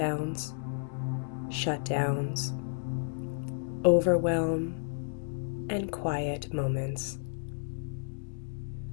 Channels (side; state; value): right; silent; digital silence